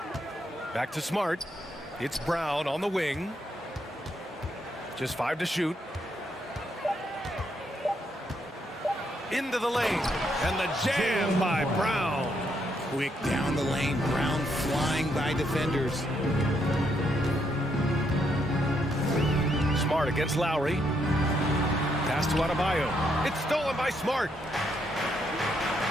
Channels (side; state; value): both; normal; correlation 0.76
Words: Back to Smart. It's Brown on the wing. Just 5 to shoot. Into the lane. And the jam by Brown. Quick down the lane. Brown flying by defenders. Smart against Lowry. Pass to Adebayo. It's stolen by Smart.